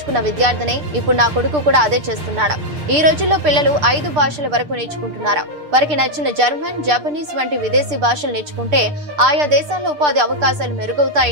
విద్యార్థినే. ఇప్పుడు నా కొడుకు కూడా అదే చేస్తున్నాడు. ఈ రోజుల్లో పిల్లలు 5 భాషల వరకు నేర్చుకుంటున్నారు. వారికి నచ్చిన జర్మన్, జపనీస్ వంటి విదేశీ భాషలు నేర్చుకుంటే ఆయా దేశాల్లో ఉపాధి అవకాశాలు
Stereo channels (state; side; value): late; left; 6.7 ms